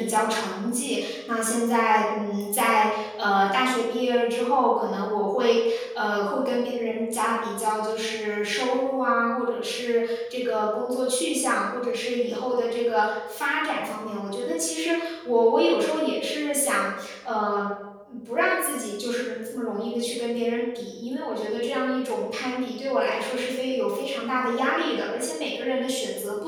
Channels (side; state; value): both; identical; correlation 1.00